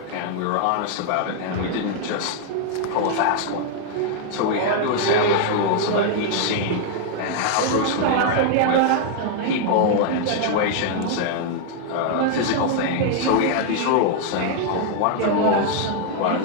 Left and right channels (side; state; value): both; different; correlation 0.00